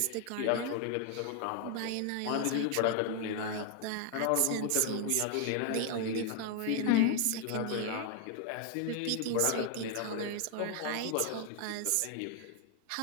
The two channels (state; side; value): different; both; correlation 0.00